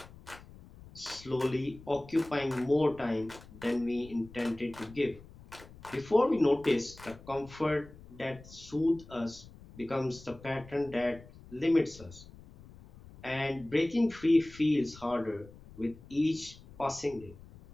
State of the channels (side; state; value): left; noise; rumble, 20 dB below the sound